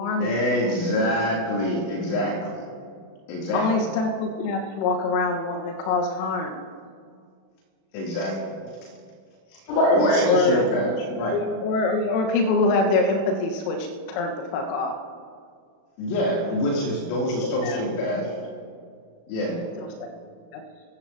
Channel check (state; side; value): late; right; 36 ms